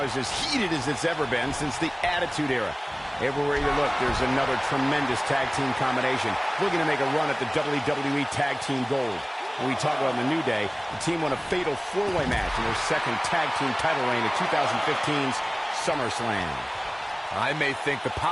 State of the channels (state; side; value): identical; both; correlation 1.00